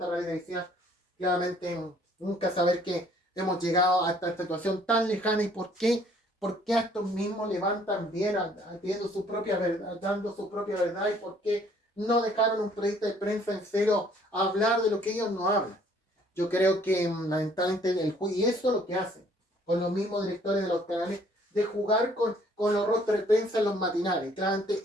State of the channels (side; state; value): both; normal; correlation 0.60